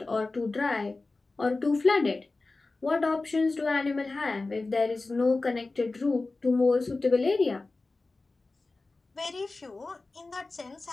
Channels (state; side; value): quieter; right; 3.4 dB